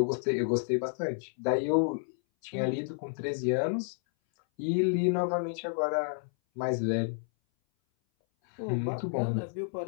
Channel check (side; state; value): right; silent; 58 dB below the other